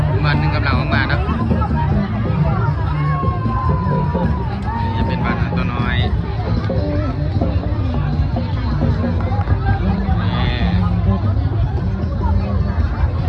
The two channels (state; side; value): identical; both; correlation 1.00